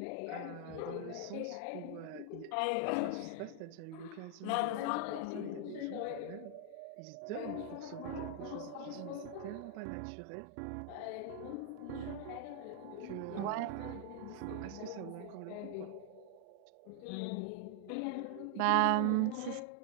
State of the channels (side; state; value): both; different; correlation 0.00